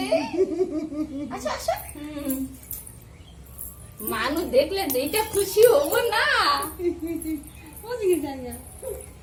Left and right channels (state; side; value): identical; both; correlation 1.00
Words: আসো মানুষ দেখলে যেটা খুশি হবো না